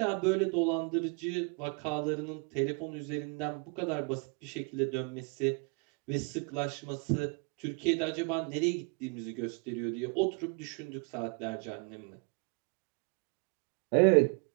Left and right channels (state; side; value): quieter; left; 33.7 dB